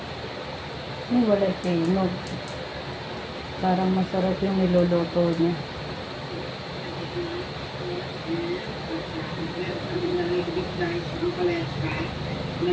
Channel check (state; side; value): identical; both; correlation 1.00